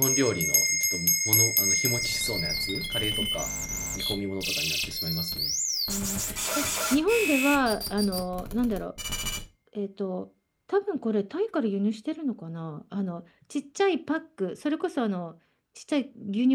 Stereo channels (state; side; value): identical; both; correlation 1.00